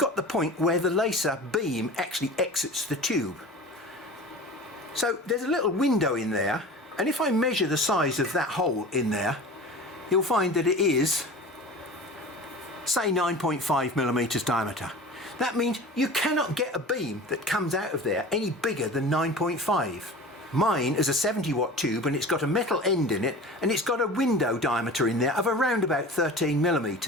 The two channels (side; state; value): both; normal; correlation 0.37